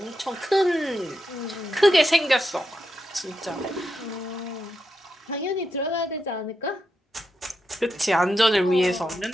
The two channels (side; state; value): both; normal; correlation 0.85